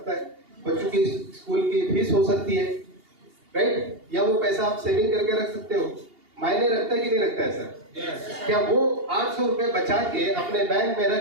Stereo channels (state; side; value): late; left; 2.8 ms